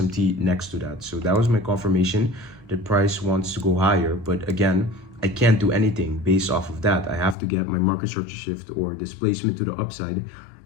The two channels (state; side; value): drops out; right; at 7.4 s